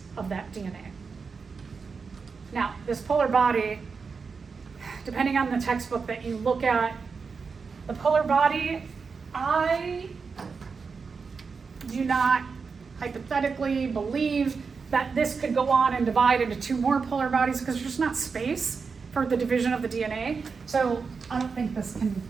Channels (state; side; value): quieter; left; 5.1 dB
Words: of that DNA. Now, this polar body, depending on the textbook that you look at, the polar body, I do not hypothetically believe that this could go on and divide into 2 more polar bodies because there's just not space for the division of the DNA. So I don't think this can